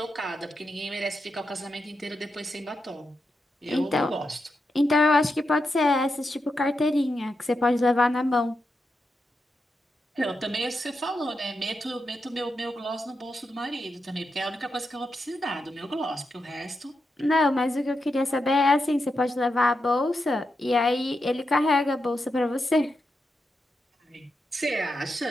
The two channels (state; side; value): normal; both; correlation 0.86